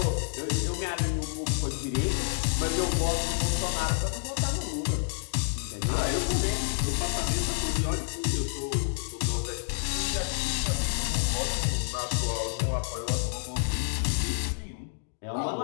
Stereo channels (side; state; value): right; silent; digital silence